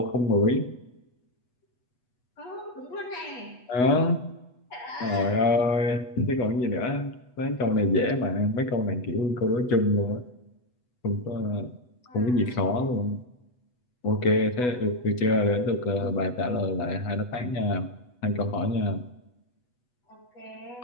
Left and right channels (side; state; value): right; late; 8.1 ms